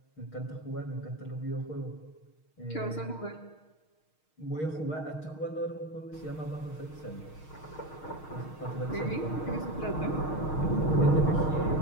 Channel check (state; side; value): late; right; 6.4 ms